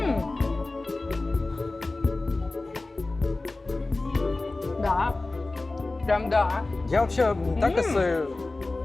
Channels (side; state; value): right; quieter; 3.2 dB